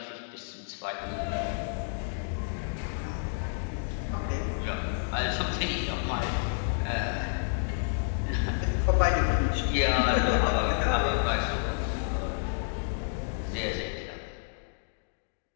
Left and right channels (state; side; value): silent; right; digital silence